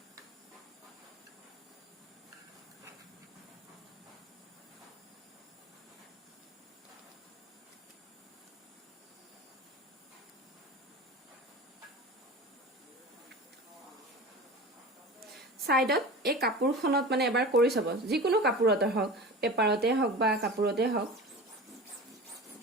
ছাইডত এই কাপোৰখনত মানে এবাৰ কৰি চাব, যিকোনো কাপোৰতে হওক, পেপাৰতে হওক বা কাপোৰতে হওক,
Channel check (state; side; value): normal; both; correlation 0.33